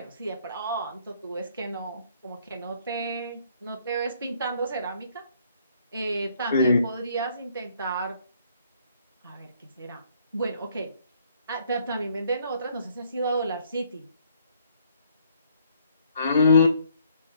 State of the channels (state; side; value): inverted; both; correlation -0.65